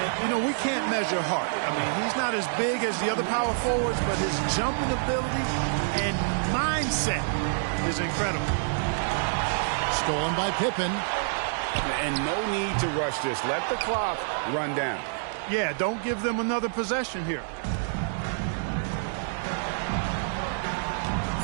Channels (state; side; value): silent; left; digital silence